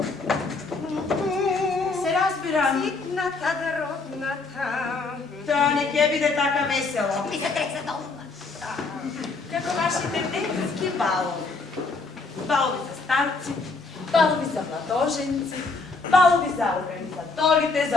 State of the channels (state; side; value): quieter; right; 3.9 dB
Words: Се разбирам. Ситната родната. Тоа не ќе биде така весело. Ми се треса долна. Како вашите детски балови. балови за старци, балови за младоженци, балови за организаторите,